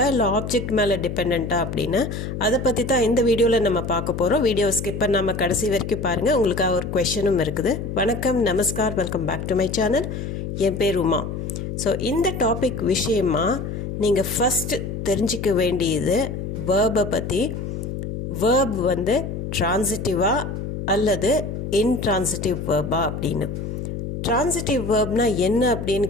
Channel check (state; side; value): noise; left; hum, 5 dB below the sound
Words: இல்லை ஆப்ஜெக்ட் மேலே டிபெண்ட்டாக அப்படின்னு அதை பற்றி தான் இந்த வீடியோவில் நம்ம பார்க்க போகிறோம். வீடியோ ஸ்கிப் பண்ணாமல் கடைசி வரைக்கும் பாருங்கள். உங்களுக்காக ஒரு கொஷனும் இருக்குது. வணக்கம், நமஸ்கார், welcome back to my channel. என் பேர் உமா. ஸோ இந்த டாபிக் விஷயமாக நீங்கள் ஃபஸ்ட்டு தெரிஞ்சிக்க வேண்டியது வேர்பை பற்றி. வேர்ப் வந்து ட்ரான்சிட்டிவா அல்லது இன்ட்ரான்சிட்டிவ் வேர்பா அப்படின்னு. ட்ரான்சிட்டிவ் வேர்ப்னால் என்ன அப்படின்னு